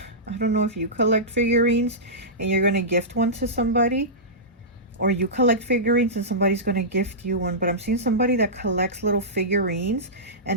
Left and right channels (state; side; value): normal; both; correlation -0.16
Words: I don't know if you collect figurines and you're going to gift one to somebody, or you collect figurines and somebody's going to gift you one. But I'm seeing somebody that collects little figurines